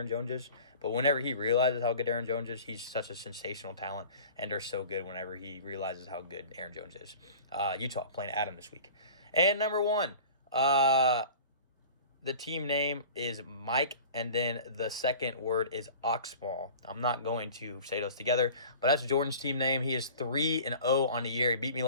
Jones is, but whenever he realizes how good Aaron Jones is, he's such a sensational talent, and they're so good whenever he realizes how good Aaron Jones is. Utah playing Adam this week. And number 1, the team name is Mike, and then the second word is Oxball. I'm not going to say those together, but that's Jordan's team name. He is 3-0 on the year. He beat me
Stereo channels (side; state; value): both; inverted; correlation -0.42